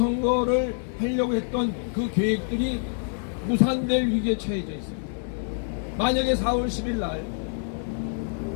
하려고 했던 그 계획들이 무산될 위기에 처해져 있습니다. 만약에 4월 10일 날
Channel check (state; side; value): silent; right; digital silence